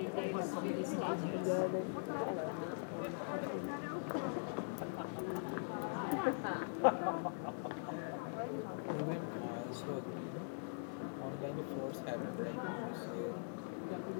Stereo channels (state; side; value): silent; right; digital silence